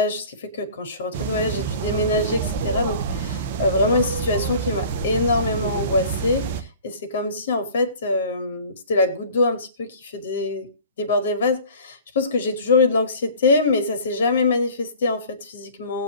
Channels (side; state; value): both; inverted; correlation -0.45